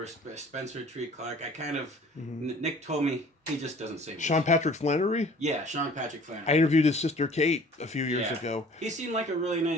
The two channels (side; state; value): both; normal; correlation 0.50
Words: Spencer Treat Clark. I kind of Nick told me he just doesn't say much. Sean Patrick Flannery. Yeah, Sean Patrick Flannery. I interviewed his sister Kate a few years ago. He seemed like a really